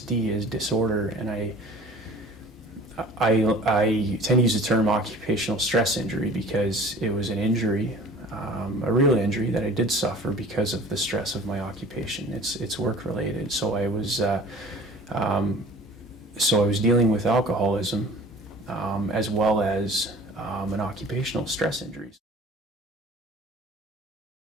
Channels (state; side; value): normal; both; correlation 0.45